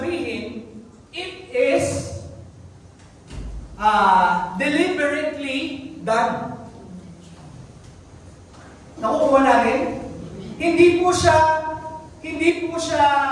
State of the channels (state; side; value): identical; both; correlation 1.00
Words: it is deliberately done. Nakukuha natin? Hindi po siya